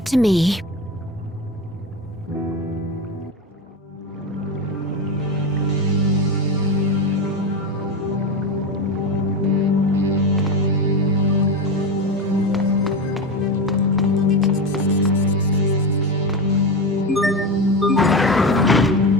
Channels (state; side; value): normal; both; correlation 0.19